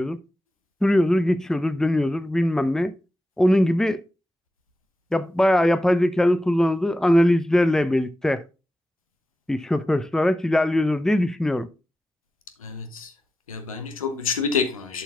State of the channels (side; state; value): both; normal; correlation 0.91